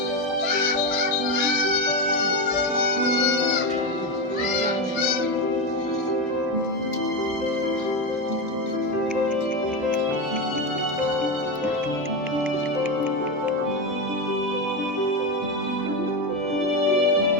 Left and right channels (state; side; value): normal; both; correlation 0.13